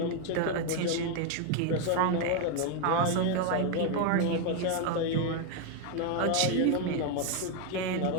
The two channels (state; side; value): different; both; correlation 0.01